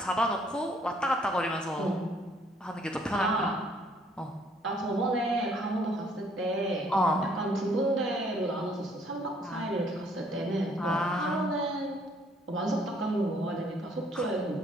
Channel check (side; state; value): both; normal; correlation 0.64